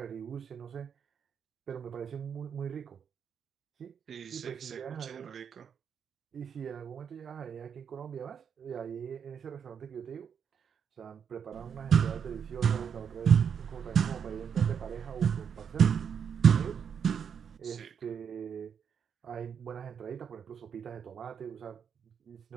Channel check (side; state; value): left; quieter; 7.4 dB